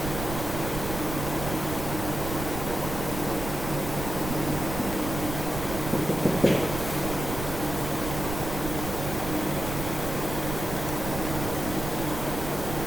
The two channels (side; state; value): right; noise; rumble, 6 dB below the sound